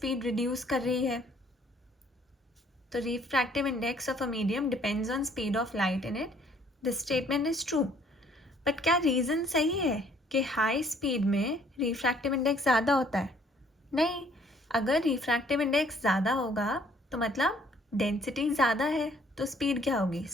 रिड्यूस कर रही है. तो refractive index of a medium depends on speed of light in it, this statement is true. But क्या रीज़न सही है कि हाई स्पीड में रिफ्रैक्टिव इंडेक्स ज़्यादा होता है? नहीं. अगर रिफ्रैक्टिव इंडेक्स ज़्यादा होगा तो मतलब डेंसिटी ज़्यादा है, तो स्पीड क्या होगी,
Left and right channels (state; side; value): normal; both; correlation 0.62